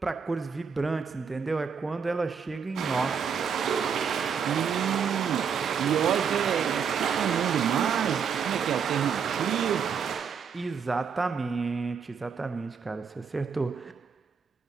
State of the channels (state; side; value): quieter; left; 6.6 dB